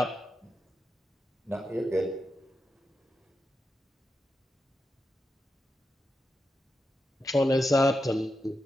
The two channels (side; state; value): both; normal; correlation 0.87